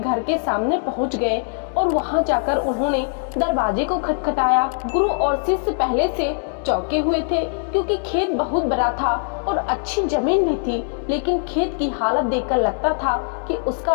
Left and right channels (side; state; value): right; silent; digital silence